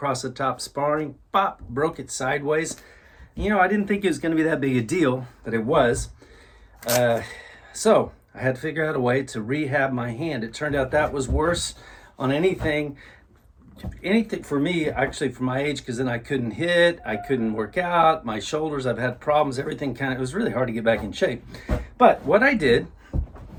the top sparring, pop, broke it sideways. You know, I didn't think it was going to be that big a deal, but it was. So I had to figure out a way to rehab my hand. It turned out that was worse on anything for me, actually, for my age, because then I couldn't hit, I couldn't work out, my shoulders, I've had problems, everything it was really hard to get back in shape. But what I did,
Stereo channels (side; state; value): both; identical; correlation 1.00